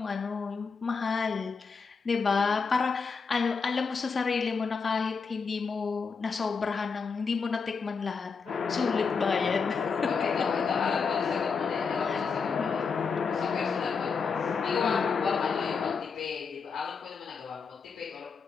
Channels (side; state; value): right; quieter; 5.3 dB